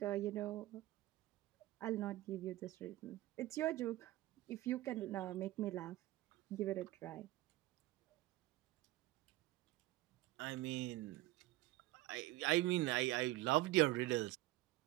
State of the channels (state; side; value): quieter; left; 17.1 dB